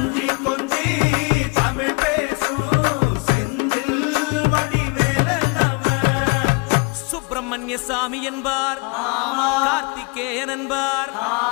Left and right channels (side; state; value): right; quieter; 30.5 dB